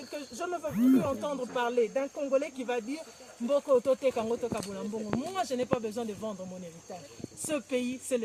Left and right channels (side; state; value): both; identical; correlation 1.00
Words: ne veux plus entendre parler d'un Congolais qui va dire moi, je n'ai pas besoin de vendre mon héritage. Ce pays, c'est